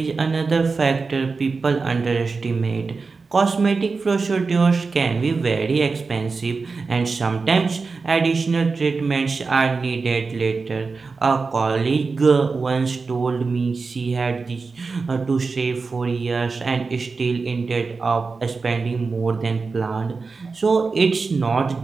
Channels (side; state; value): left; quieter; 4.4 dB